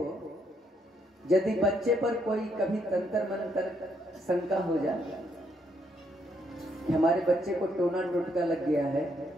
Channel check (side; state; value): both; normal; correlation 0.74